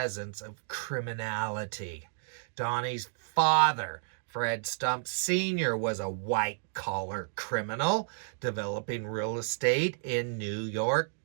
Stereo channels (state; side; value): silent; left; digital silence